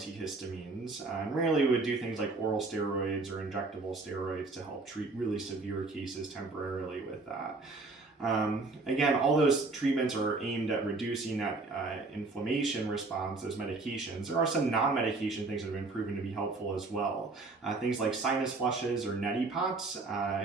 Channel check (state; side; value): quieter; left; 3.6 dB